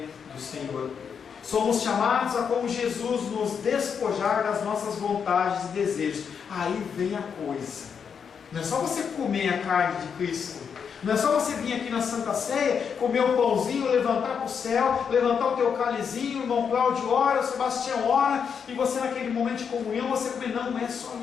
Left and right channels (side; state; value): right; quieter; 6.8 dB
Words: do Senhor. Somos chamados a, como Jesus, nos despojar das nossas vontades e desejos. Aí vem a coisa. Não é só você comer a carne de Cristo. Não é só você vir aqui na Santa Ceia, comer o pãozinho, levantar para o céu, levantar o teu cálizinho, o irmão Cláudio ora, o Sebastião ora, e você naquele momento de comunhão, você comer. Não é só